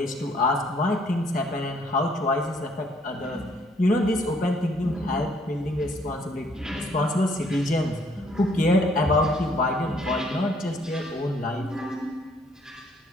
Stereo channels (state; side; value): normal; both; correlation 0.64